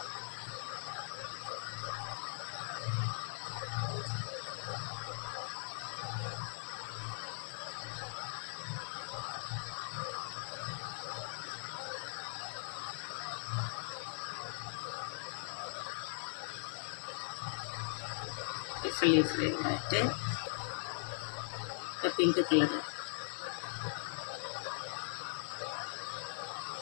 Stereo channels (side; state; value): right; silent; 51 dB below the other